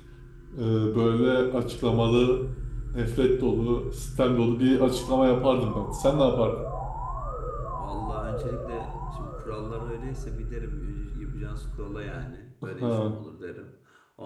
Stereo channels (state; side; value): identical; both; correlation 1.00